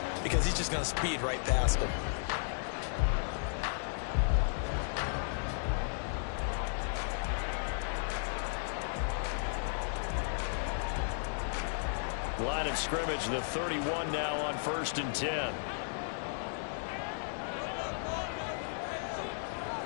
because he's just going to speed right past them. Line of scrimmage, the 31 now on 1st and 10.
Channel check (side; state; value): right; silent; digital silence